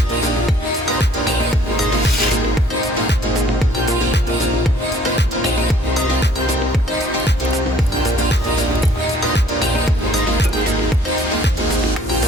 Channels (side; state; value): both; normal; correlation 0.58